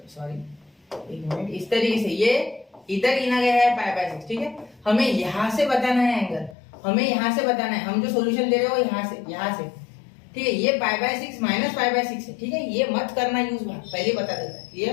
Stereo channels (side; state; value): right; drops out; at 6.6 s